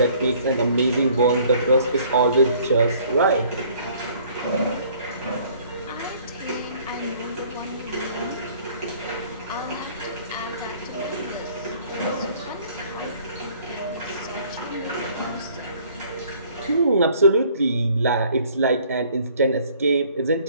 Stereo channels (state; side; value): inverted; both; correlation -0.57